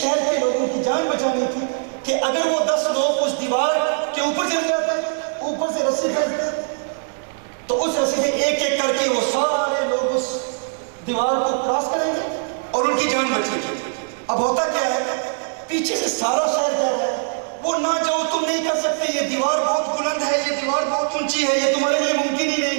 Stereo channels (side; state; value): left; silent; digital silence